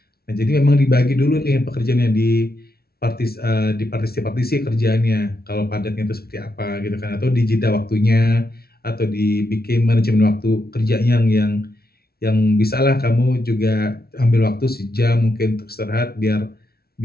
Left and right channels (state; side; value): late; right; 0.45 ms